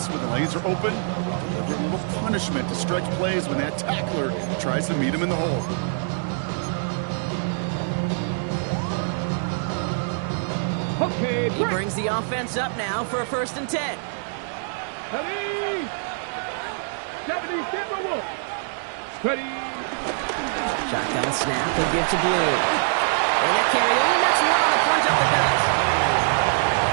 when the lanes are open, deliver a little punishment to stretch plays when that tackler tries to meet him in the hole. Okay, He brings the offense up now for a first and 10. 70 Timberwolf. Ready. Shotgun snap, he'll give to Blue. And that carry only nets one on the plunge up the gut.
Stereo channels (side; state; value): left; silent; digital silence